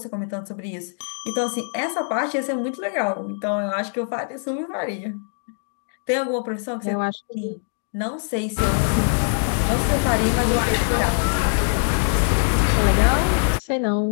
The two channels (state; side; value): silent; right; 64 dB below the other